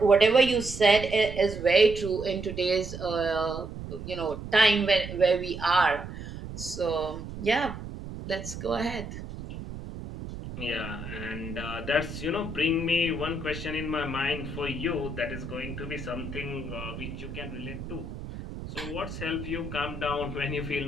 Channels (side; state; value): right; noise; rumble, 9 dB below the sound